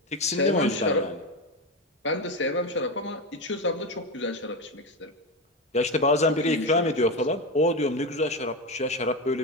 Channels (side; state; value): both; normal; correlation 0.16